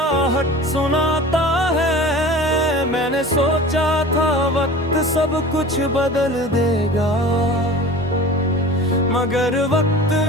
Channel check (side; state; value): both; normal; correlation 0.38